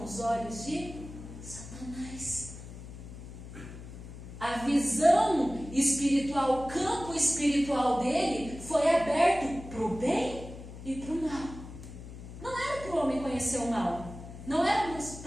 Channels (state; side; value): noise; left; hum, 13 dB below the sound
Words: os olhos de Satanás. A visão espiritual, o campo espiritual dele foi aberto para o bem e para o mal. Não era para o homem conhecer o mal. Não era